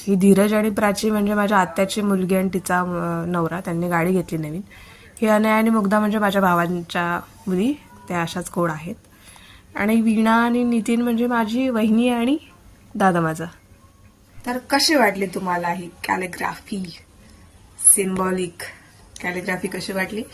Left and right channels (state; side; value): identical; both; correlation 1.00